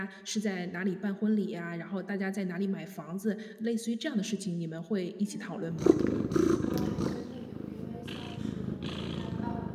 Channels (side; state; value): both; identical; correlation 1.00